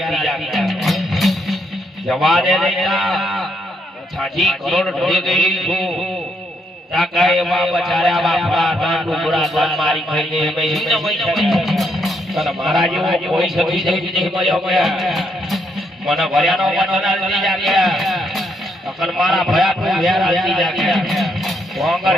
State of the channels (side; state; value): both; normal; correlation 0.76